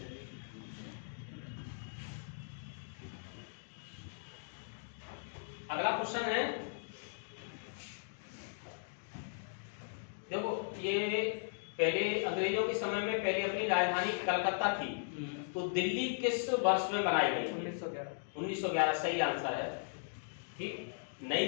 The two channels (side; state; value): right; silent; digital silence